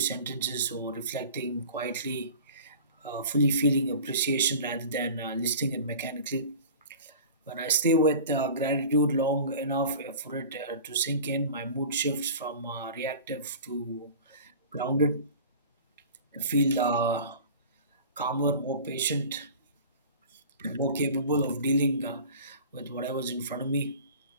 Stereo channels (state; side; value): inverted; both; correlation -0.40